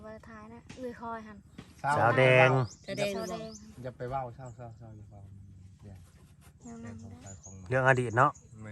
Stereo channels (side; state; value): both; identical; correlation 1.00